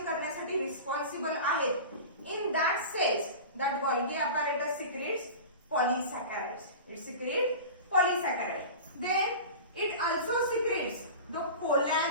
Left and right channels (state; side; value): inverted; both; correlation -0.33